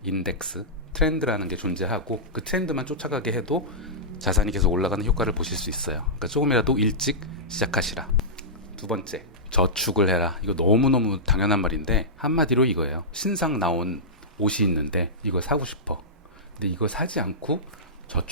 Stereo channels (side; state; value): both; normal; correlation -0.14